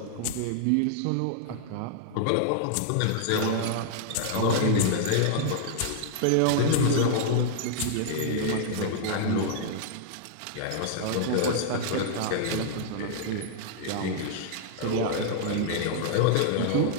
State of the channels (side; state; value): both; different; correlation -0.01